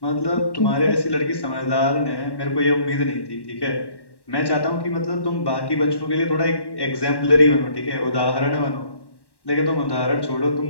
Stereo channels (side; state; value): right; late; 1.1 ms